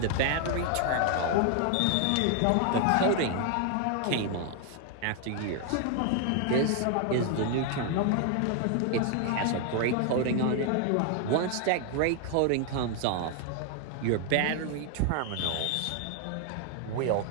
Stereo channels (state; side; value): different; both; correlation 0.00